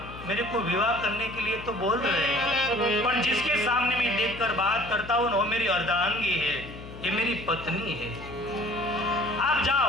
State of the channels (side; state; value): left; noise; hum, 13 dB below the sound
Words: मेरे को विवाह करने के लिए तो बोल रहे हैं, पर जिसके सामने मैं देखकर बात करता हूं वो मेरी अर्धांगी है, ये मेरी पत्नी है। आप